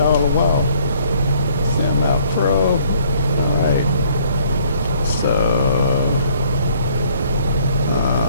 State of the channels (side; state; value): both; inverted; correlation -0.63